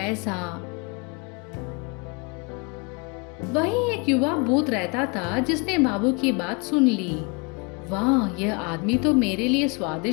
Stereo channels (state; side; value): quieter; right; 31.6 dB